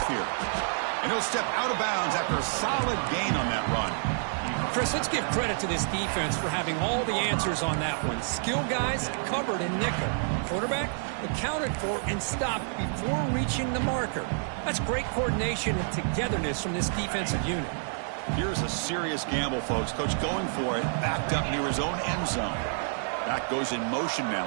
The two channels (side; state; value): left; silent; 59 dB below the other